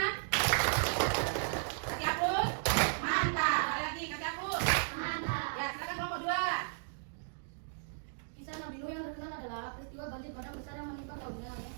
Kasih hapus. Mantap. Sekali lagi, kasih hapus. Mantap. Ya, silakan kelompok 2. Kisah Nabi Nuh yang terkenal adalah peristiwa banjir bandang besar yang menimpa kaumnya yang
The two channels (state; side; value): silent; left; digital silence